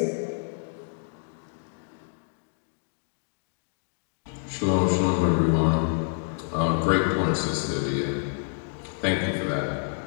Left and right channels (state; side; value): silent; right; digital silence